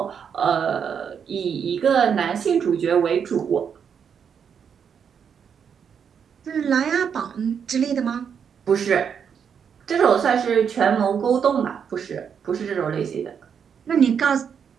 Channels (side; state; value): left; quieter; 7.3 dB